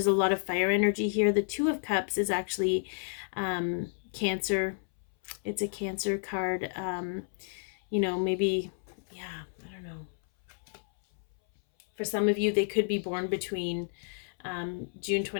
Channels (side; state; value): right; silent; 57 dB below the other